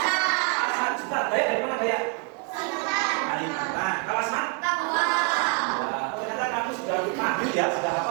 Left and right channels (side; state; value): left; quieter; 35.8 dB